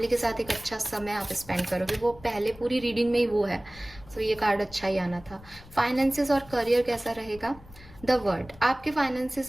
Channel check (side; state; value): left; noise; rumble, 20 dB below the sound